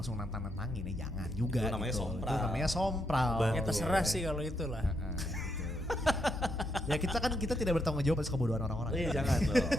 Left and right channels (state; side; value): normal; both; correlation 0.79